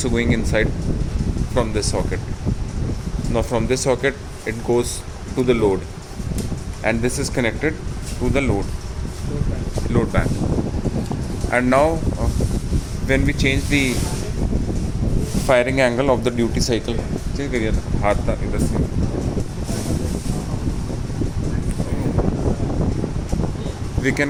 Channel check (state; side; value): identical; both; correlation 1.00